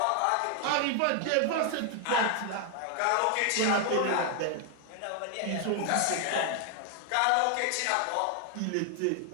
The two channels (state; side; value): different; both; correlation 0.00